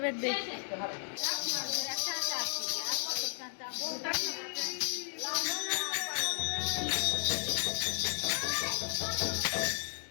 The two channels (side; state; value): right; silent; digital silence